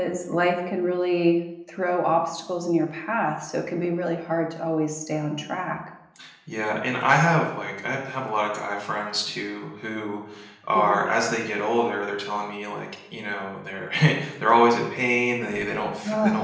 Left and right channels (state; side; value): identical; both; correlation 1.00